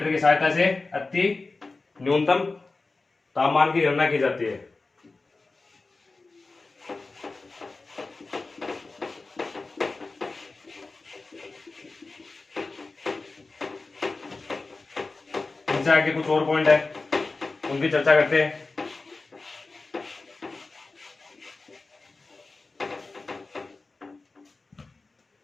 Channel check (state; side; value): quieter; right; 3.6 dB